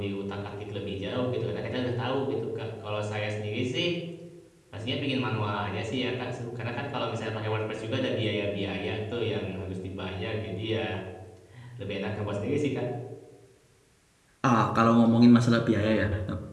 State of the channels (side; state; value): both; identical; correlation 1.00